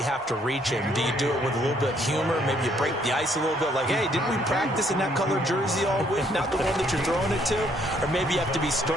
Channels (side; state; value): both; normal; correlation 0.67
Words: have to reach him. Do you do it with a little bit of humor? Maybe you break the ice a little bit like, hey, didn't we practice in that colored jersey all week, not the one that you're throwing it to? Or maybe you have to be